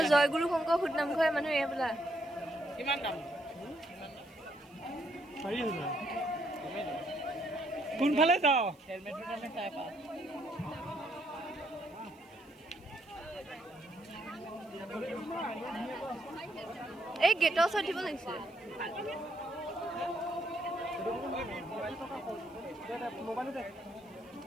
জয়গুৰু শংকৰ ফুট নামঘৰ মানুহ এয়া বোলা কিমান দাম 4000 কোনফালে যাও হেলমেটৰ দামে চাই পা এই গেটৰ ওচৰত দিব লাগিছিল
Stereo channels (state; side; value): noise; right; hiss, 30 dB below the sound